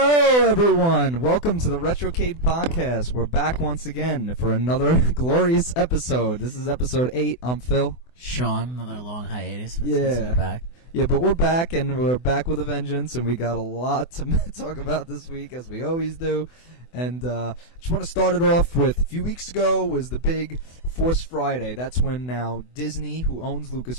everyone. Welcome to the Retrocade Podcast. We're back once again for another glorious episode. This is episode 8. I'm Phil. Sean, another long hiatus. Yeah. Back. Yeah, but we're back, and we're back with a vengeance, and we got a lot to talk about this week, as we always do. And just want to start it off with, a few weeks ago was the big Force Friday. That's when now Disney, who owns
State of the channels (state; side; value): late; right; 24 ms